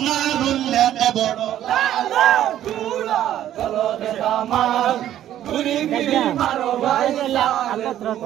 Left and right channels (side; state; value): left; quieter; 11.9 dB